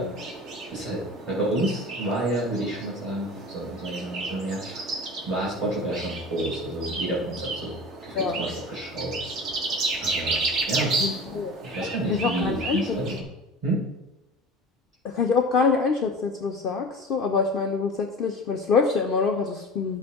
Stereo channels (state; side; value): normal; both; correlation 0.36